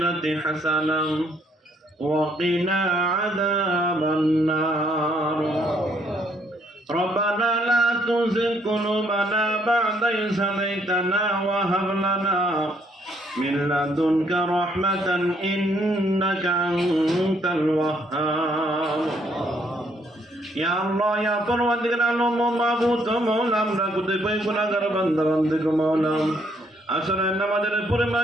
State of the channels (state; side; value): normal; both; correlation 0.69